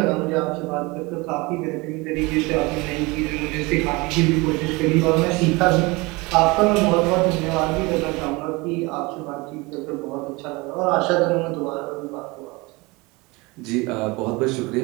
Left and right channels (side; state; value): left; quieter; 24.6 dB